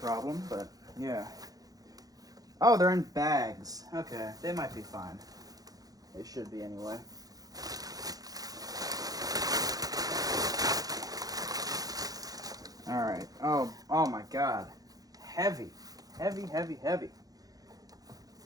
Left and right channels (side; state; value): left; late; 0.18 ms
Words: but yeah. Oh, they're in bags. Okay, they might be fine. They should be anyway. Alright. Oh my god. Heavy. Heavy, heavy, heavy.